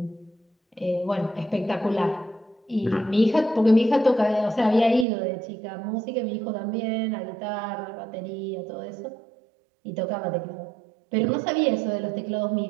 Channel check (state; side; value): drops out; left; at 5.1 s